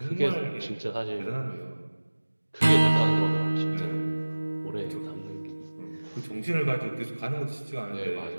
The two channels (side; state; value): both; inverted; correlation -1.00